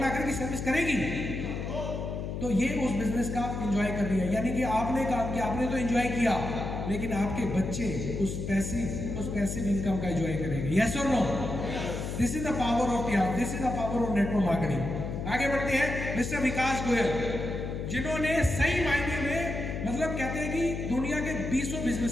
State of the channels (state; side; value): noise; left; hum, 4 dB below the sound